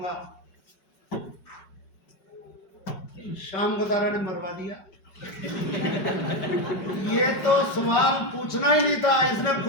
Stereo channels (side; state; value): right; late; 5.1 ms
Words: शाम गोदारा ने मरवा दिया। ये तो सवाल पूछना ही नहीं था, इसने